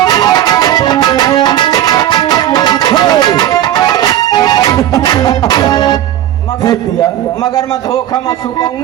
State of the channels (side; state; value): left; quieter; 12.3 dB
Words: फेंक दिया मगर मैं धोखा सूखा में